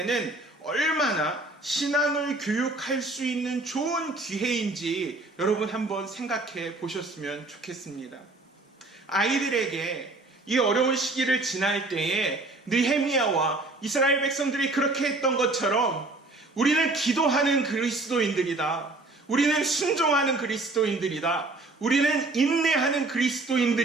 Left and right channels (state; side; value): quieter; left; 3.0 dB